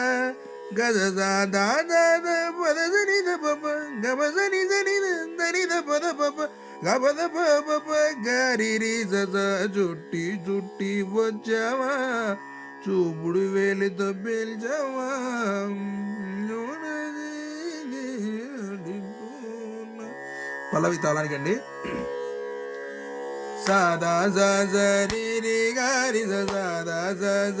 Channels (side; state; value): both; identical; correlation 1.00